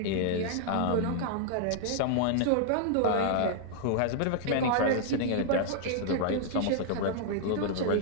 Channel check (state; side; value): different; both; correlation -0.01